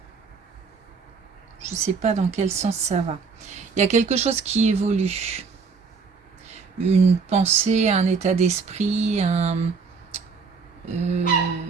je ne sais pas dans quel sens ça va. Il y a quelque chose qui évolue. Une pensée, un état d'esprit,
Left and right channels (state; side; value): quieter; left; 5.1 dB